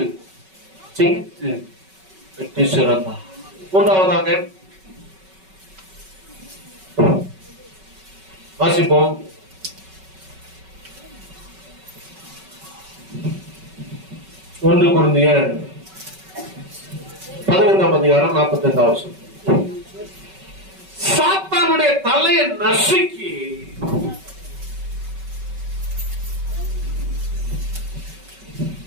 ஜெயித்து வெற்றி சிறந்தார். மூன்றாவதாக வாசிப்போம். ஒன்று கொரிந்தியர் 15:45. சாத்தானுடைய தலையை நசுக்கி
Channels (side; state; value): left; late; 5.3 ms